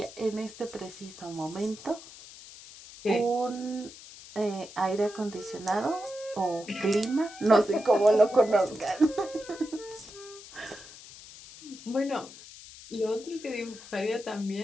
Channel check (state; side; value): noise; left; hiss, 17 dB below the sound